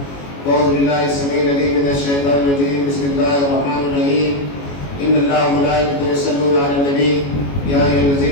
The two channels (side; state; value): right; late; 21 ms